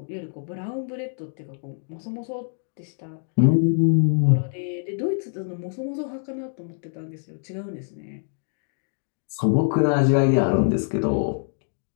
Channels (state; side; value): silent; right; digital silence